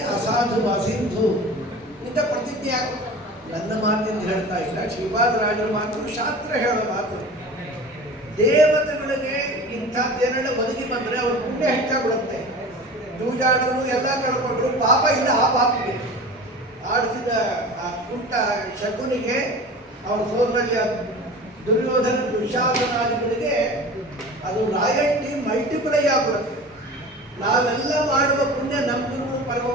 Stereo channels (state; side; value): normal; both; correlation 0.37